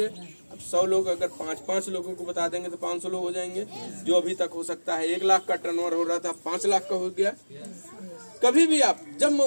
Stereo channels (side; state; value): both; inverted; correlation -1.00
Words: अब 100 लोग अगर 5-5 लोगों को बता देंगे तो 500 लोग हो जाएंगे। जो अभी तक हो सकता है 1 लाख का टर्नओवर हो रहा था, 5 लाख का हो गया। कभी भी आप जब